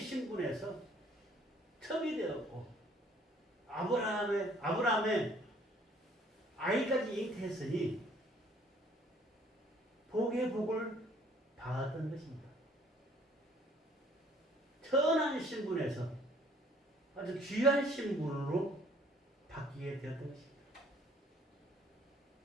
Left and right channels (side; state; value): both; normal; correlation 0.59